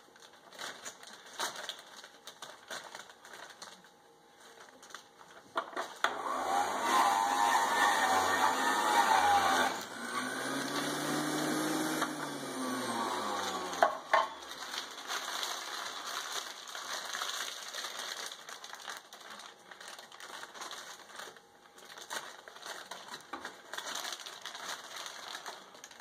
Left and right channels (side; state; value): both; identical; correlation 1.00